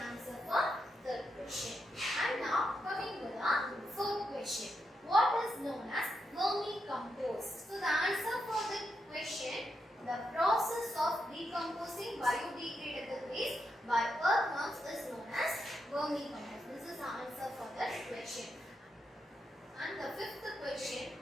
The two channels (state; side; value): normal; both; correlation 0.84